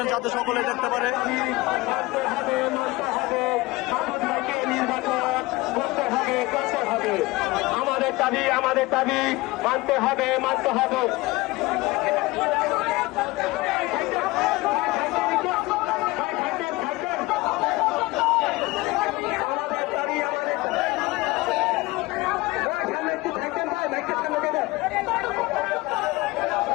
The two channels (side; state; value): right; quieter; 21.3 dB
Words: যাতে সকলে দেখতে পারে। আমাদের দাবি মানতে হবে।